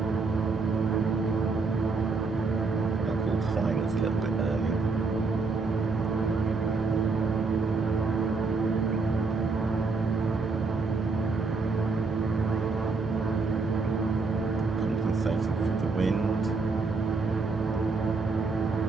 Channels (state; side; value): quieter; left; 4.2 dB